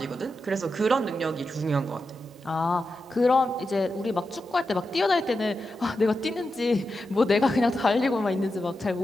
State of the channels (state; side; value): normal; both; correlation 0.89